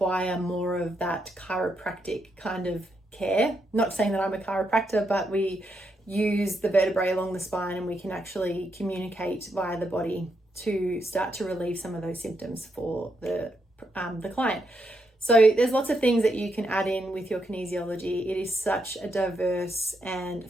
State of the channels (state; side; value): normal; both; correlation 0.80